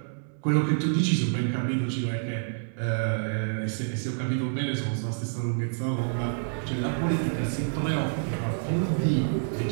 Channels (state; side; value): silent; left; digital silence